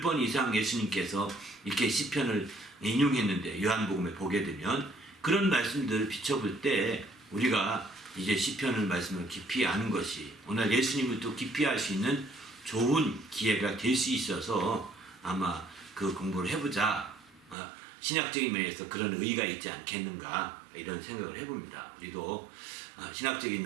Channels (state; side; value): drops out; left; at 17.6 s